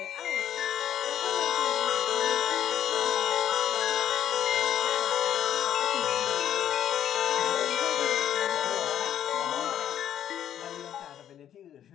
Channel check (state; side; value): quieter; right; 10.4 dB